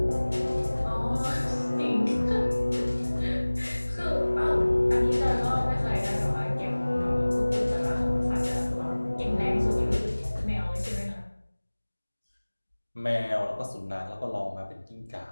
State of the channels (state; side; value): inverted; both; correlation -1.00